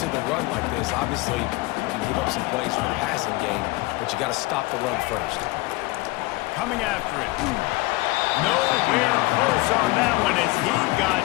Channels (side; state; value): right; quieter; 21.8 dB